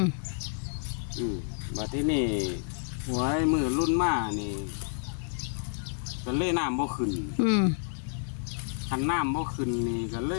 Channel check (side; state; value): right; silent; digital silence